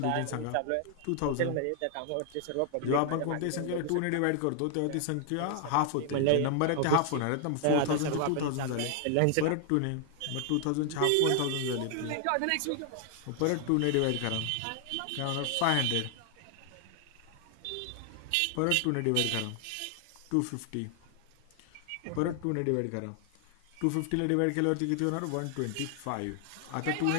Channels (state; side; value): different; both; correlation 0.00